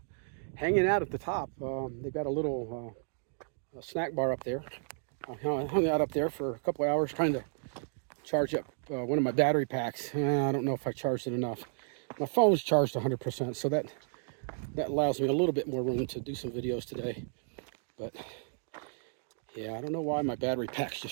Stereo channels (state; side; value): silent; left; digital silence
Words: hanging out at the top. They've got a little snack bar up there. I hung out up there for a couple of hours trying to charge up one of my battery packs. I don't know if I charged it enough. My phone's charged 100%, so that allows me a little bit more room to do some videos today. But yeah, I don't know why my battery packs